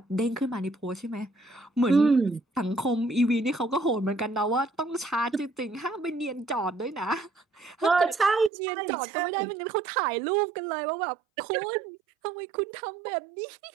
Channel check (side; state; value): left; drops out; at 8.5 s